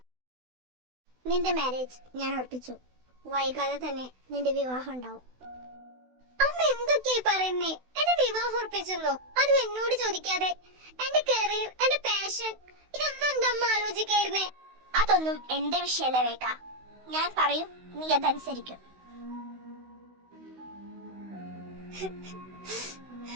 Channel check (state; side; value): late; left; 16 ms